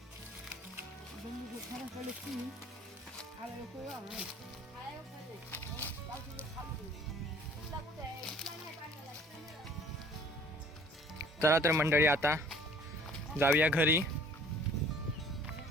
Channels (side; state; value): both; normal; correlation 0.53